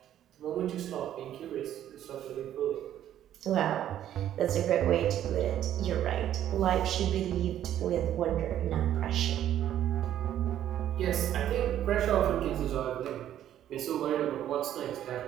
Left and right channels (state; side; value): quieter; left; 11.3 dB